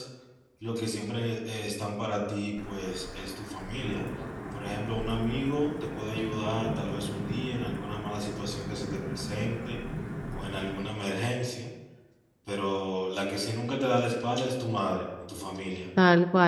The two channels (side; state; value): both; identical; correlation 1.00